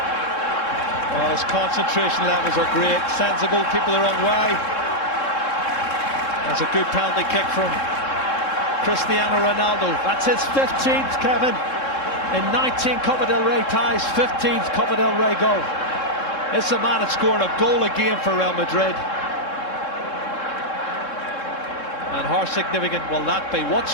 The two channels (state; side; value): late; right; 3.7 ms